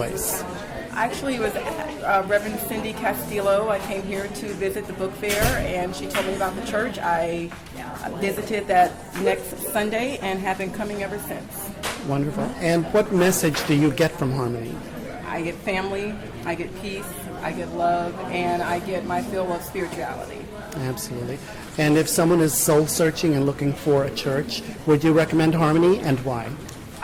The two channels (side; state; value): both; identical; correlation 1.00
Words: Actually, it was Reverend Cindy Castillo. I came here to visit the book fair, and she told me about the church. I visited that next Sunday and have been coming ever since. Wonderful. And what message do you get from Harmony? I get family, I get peace, I get love, and I get my fill of spirituality. Absolutely. And if someone is soul searching and looking for a church, would you recommend Harmony, and why?